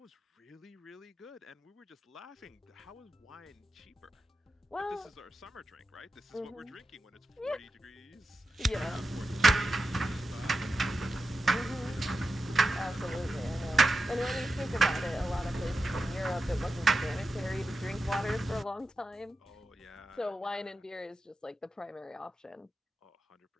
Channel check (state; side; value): normal; both; correlation 0.90